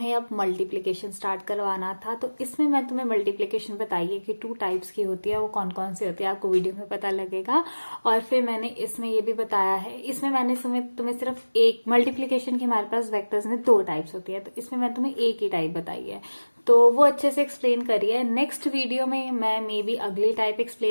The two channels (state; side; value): inverted; both; correlation -1.00